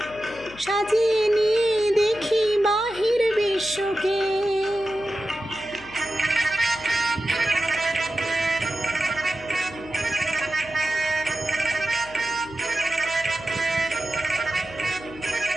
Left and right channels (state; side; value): noise; left; hum, 18 dB below the sound